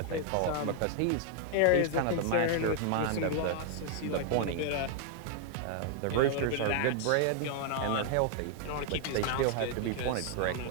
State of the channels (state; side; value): different; both; correlation 0.00